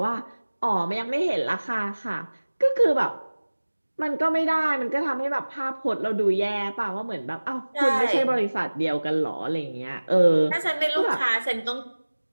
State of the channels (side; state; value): both; inverted; correlation -1.00